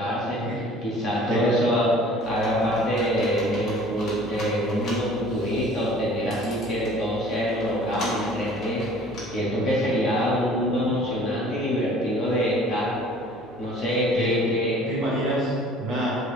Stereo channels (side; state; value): both; normal; correlation 0.50